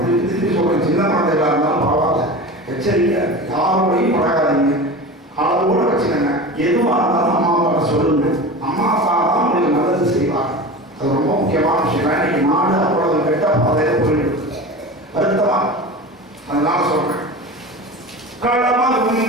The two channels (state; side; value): normal; both; correlation 0.31